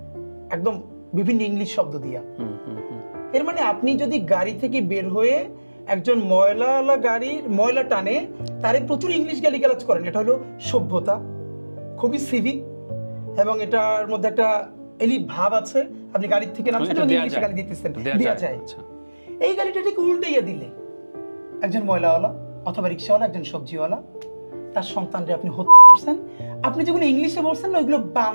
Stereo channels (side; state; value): both; inverted; correlation -1.00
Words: একদম বিভিন্ন ইংলিশ শব্দ দিয়া। এর মানে আপনি যদি গাড়ি থেকে বের হয়ে একজন ময়লাওয়ালা গাড়ির ময়লা টানে, তারে প্রচুর ইংলিশ গালিগালাজ করেন, এটা হলো সভ্যতা, খুবই সিভিক, এবং এটার মধ্যে একটা এলিট ভাব আছে। আপনি গাড়ির থেকে নামছেন, ইংলিশে গালি দিতেছেন, দেয়া যায়। এই গাড়িটা ঠিক উল্টাইয়া দিলে একজন ময়লাওয়ালা অথবা রিক্সাওয়ালা, একজন সবজিওয়ালা, তার সন্তানরে আপনি হত্যা করছেন। আপনি যেগুলো ইংলিশে বলছেন না, ওইগুলো